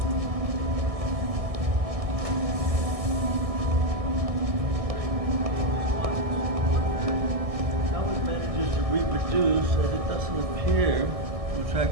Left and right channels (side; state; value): left; late; 1.6 ms